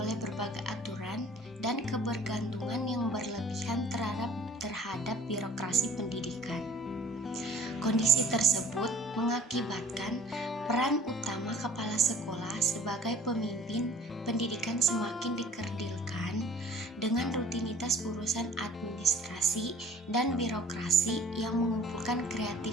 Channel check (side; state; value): both; normal; correlation 0.51